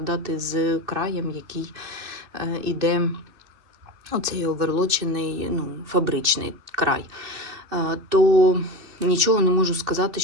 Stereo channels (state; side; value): late; left; 2.7 ms